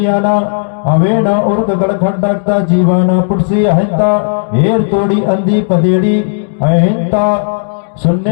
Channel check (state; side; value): silent; right; digital silence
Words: अवेना उर्क गड़खंडकता जीवाना पुटसी अहिंता, हेर तोड़ी अंधी पदेड़ी अहिंता,